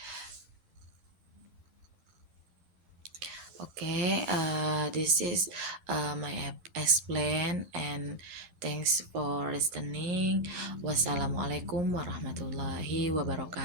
Okay, this is my explain and thanks for listening. Wassalamualaikum warahmatullahi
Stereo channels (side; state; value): left; late; 12 ms